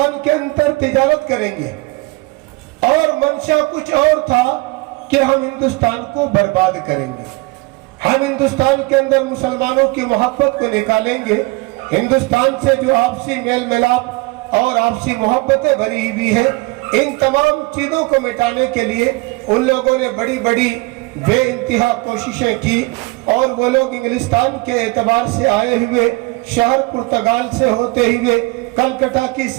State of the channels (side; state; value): left; quieter; 24.8 dB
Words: के अंदर तिजारत करेंगे और मंशा कुछ और था कि हम हिंदुस्तान को बर्बाद करेंगे। हम हिंदुस्तान के अंदर मुसलमानों की मोहब्बत को निकालेंगे। हिंदुस्तान से जो आपसी मेल मिलाप और आपसी मोहब्बतें भरी हुई है, इन तमाम चीजों को मिटाने के लिए उन लोगों ने बड़ी बड़ी बेइंतहा कोशिशें की और वो लोग इंग्लिस्तान के एतबार से आए हुए शहर पुर्तगाल से होते हुए कलकत्ता की